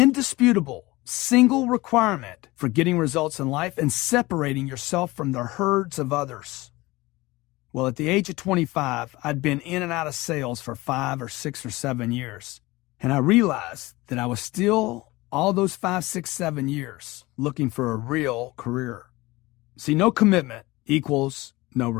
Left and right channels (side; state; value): right; quieter; 20.8 dB